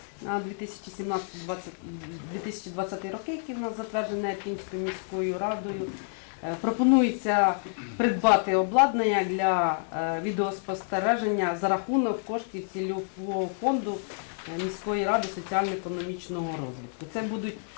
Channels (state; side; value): silent; right; 59 dB below the other